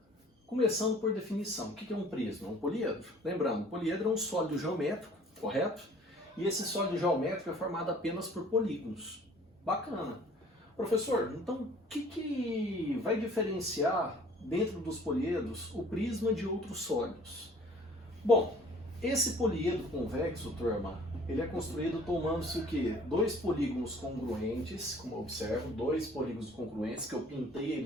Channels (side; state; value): both; normal; correlation 0.53